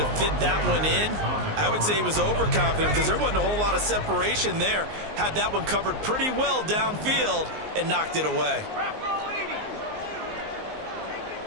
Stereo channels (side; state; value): left; late; 19 ms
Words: fit that one in. I would say he was overconfident because there wasn't a whole lot of separation there. Had that one covered pretty well downfield and knocked it away.